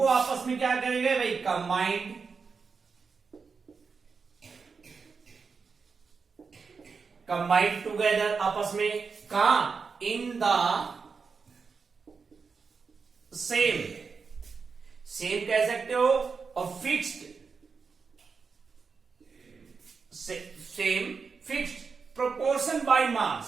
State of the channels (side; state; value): left; quieter; 5.2 dB